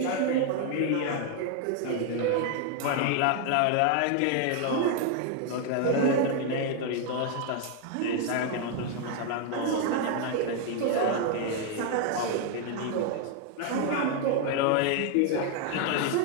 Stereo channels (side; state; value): both; different; correlation 0.01